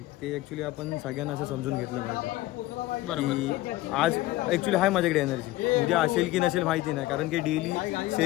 ते ॲक्च्युली आपण सगळ्यांना असं समजून घेतलं पाहिजे. बरोबर. आज ॲक्च्युली आहे माझ्याकडे एनर्जी, उद्या असेल की नसेल माहिती नाही, कारण की daily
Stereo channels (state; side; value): quieter; right; 17.2 dB